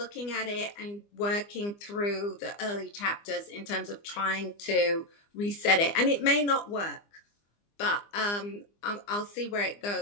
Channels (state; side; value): late; right; 25 ms